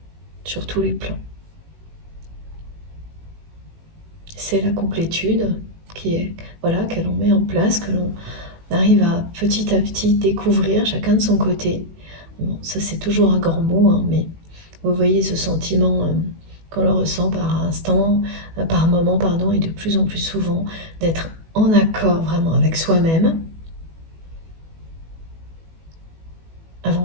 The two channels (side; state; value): left; late; 18 ms